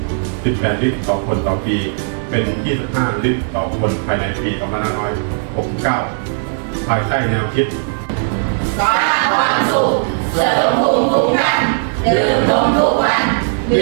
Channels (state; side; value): silent; left; digital silence